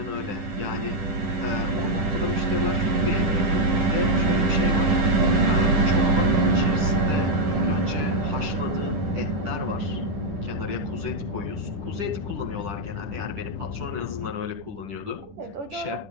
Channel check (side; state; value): left; late; 10 ms